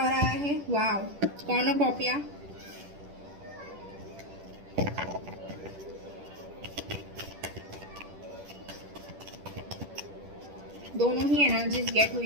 आया है, वाव, कॉर्नोकॉपिया। दोनों ही एनर्जीज गेट हुई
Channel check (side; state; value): left; late; 10 ms